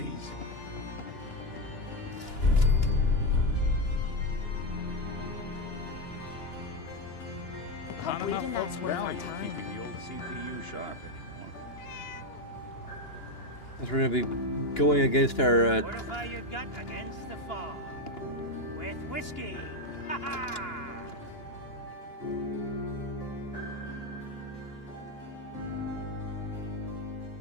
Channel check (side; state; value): right; late; 2.9 ms